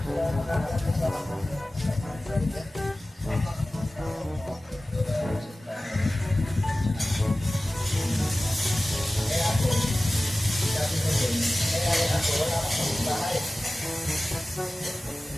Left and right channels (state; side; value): normal; both; correlation 0.97